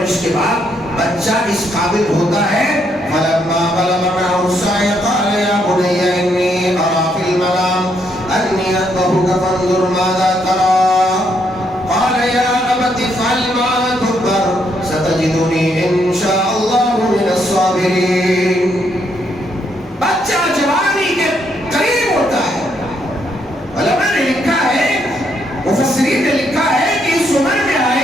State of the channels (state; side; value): normal; both; correlation 0.74